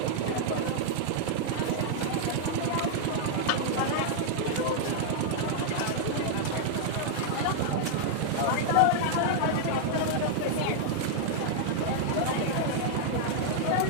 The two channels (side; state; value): both; different; correlation -0.01